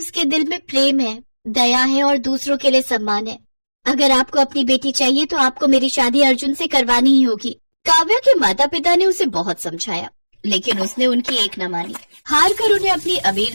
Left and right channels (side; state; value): both; inverted; correlation -1.00